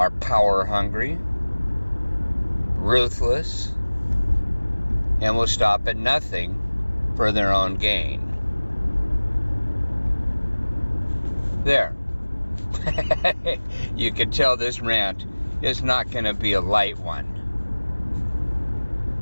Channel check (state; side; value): inverted; both; correlation -1.00